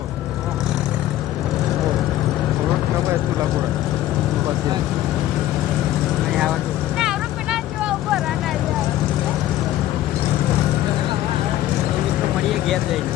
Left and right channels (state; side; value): quieter; right; 13.7 dB